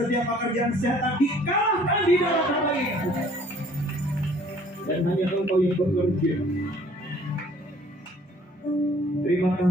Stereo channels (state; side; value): normal; both; correlation 0.56